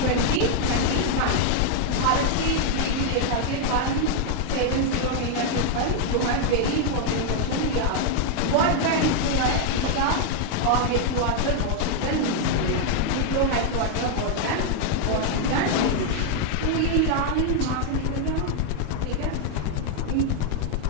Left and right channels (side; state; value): both; different; correlation 0.00